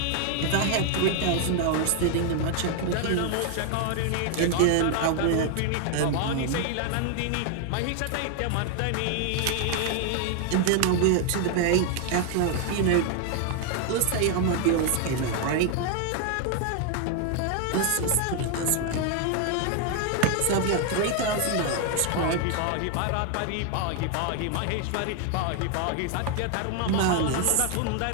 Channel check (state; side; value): different; both; correlation 0.00